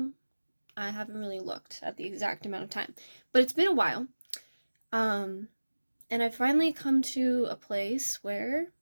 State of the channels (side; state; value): both; inverted; correlation -1.00